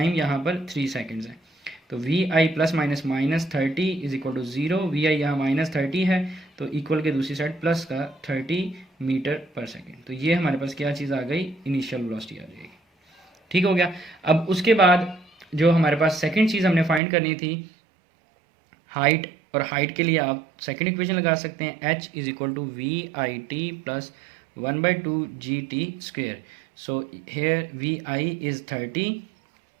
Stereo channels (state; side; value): drops out; left; at 17.0 s